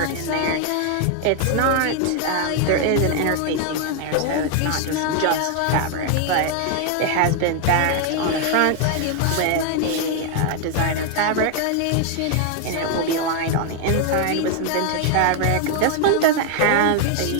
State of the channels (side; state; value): both; different; correlation 0.00